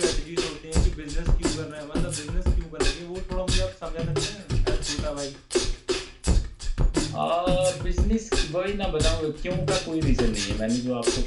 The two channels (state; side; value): identical; both; correlation 1.00